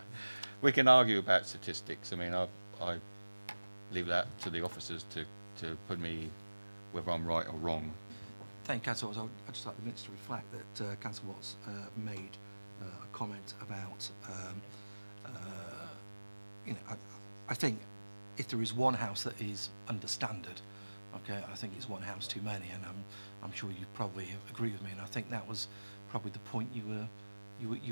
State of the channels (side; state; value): both; inverted; correlation -1.00